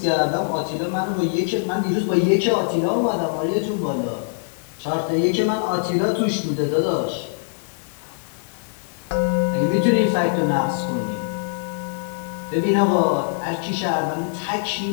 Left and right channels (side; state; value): right; silent; 59 dB below the other